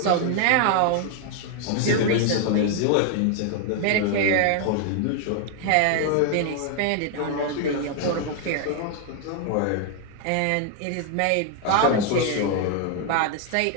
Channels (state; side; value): different; both; correlation 0.00